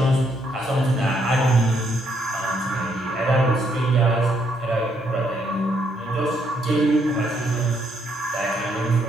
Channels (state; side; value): normal; both; correlation 0.73